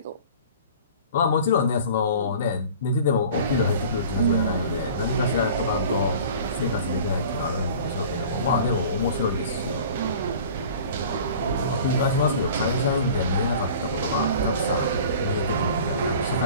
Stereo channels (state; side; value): inverted; both; correlation -0.43